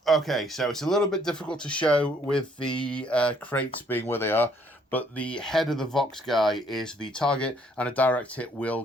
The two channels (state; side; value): normal; both; correlation 0.65